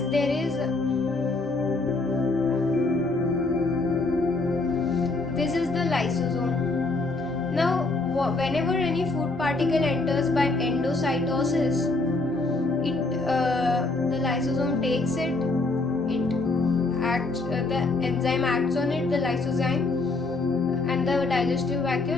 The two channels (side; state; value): right; quieter; 3.4 dB